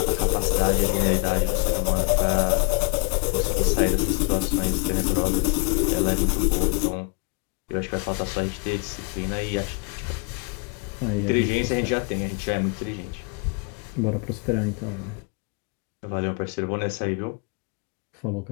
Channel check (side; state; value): right; quieter; 32.8 dB